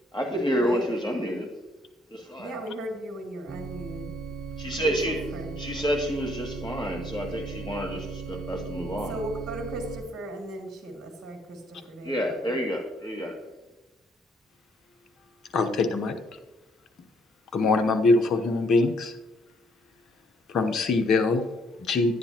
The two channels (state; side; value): normal; both; correlation 0.68